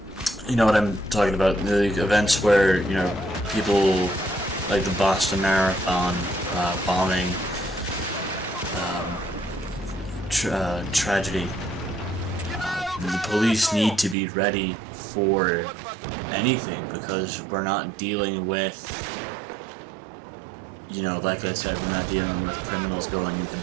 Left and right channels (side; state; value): left; drops out; at 14.2 s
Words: you know what I'm talking about, the events where, you know, people like the Boston Marathon bombing tragedy. The police need to be ready for anything, because we're not dealing with, you know, like I said, we're not dealing with criminals going into